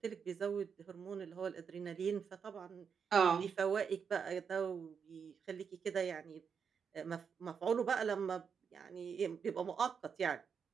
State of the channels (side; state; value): left; quieter; 6.6 dB